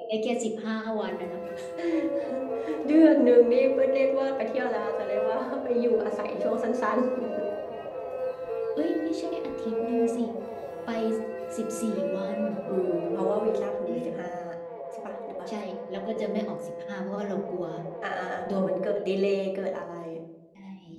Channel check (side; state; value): both; identical; correlation 1.00